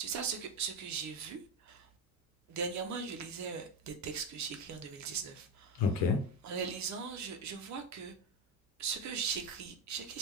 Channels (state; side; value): normal; both; correlation 0.14